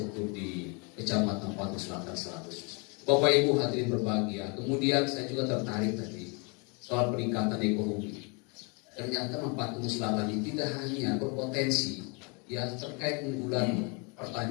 di Kecamatan Patu Selatan Selatan. Bapak Ibu hadirin berbahagia. Kemudian saya juga tertarik tadi soal peningkatan ekonomi. Ternyata Patu Selatan ini tidak hanya berpotensi ya terkait unggulan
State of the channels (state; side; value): quieter; right; 32.3 dB